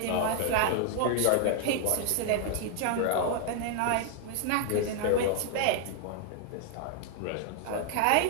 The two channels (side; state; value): both; different; correlation 0.00